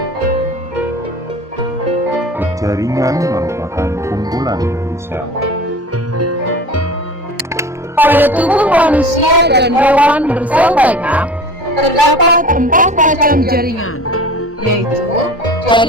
Jaringan merupakan kumpulan dari sel. Pada tubuh manusia dan hewan bersel banyak, terdapat 4 macam jaringan, yaitu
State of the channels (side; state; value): both; normal; correlation 0.39